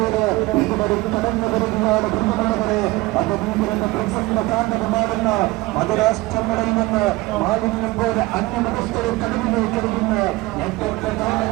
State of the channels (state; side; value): quieter; left; 20.9 dB